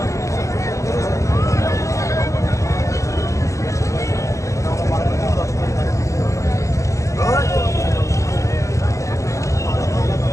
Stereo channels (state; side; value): late; right; 0.15 ms